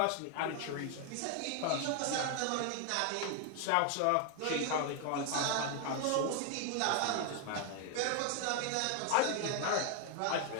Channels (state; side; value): different; both; correlation 0.01